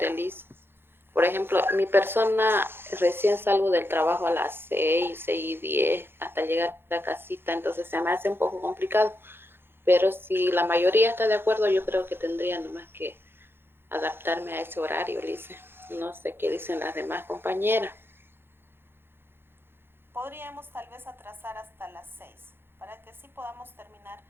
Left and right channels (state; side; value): late; left; 0.11 ms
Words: Lice. Por ejemplo, mi persona recién salgo del trabajo a las 6:10, hasta llegar a la casita, entonces se me hace un poco complicado. Pero si la mayoría está de acuerdo, yo creo que tendría nomás que adaptarme a ese horario, Lice. No sé qué dicen las demás compañeras. Podríamos tal vez atrasar hasta las 6 para que sí podamos terminar.